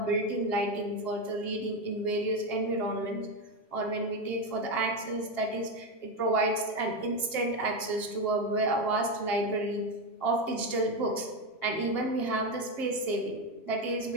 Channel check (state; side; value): late; right; 7.5 ms